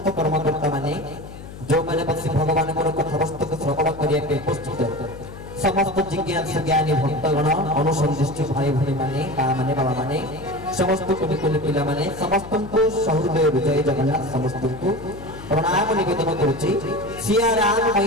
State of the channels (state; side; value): noise; left; hum, 14 dB below the sound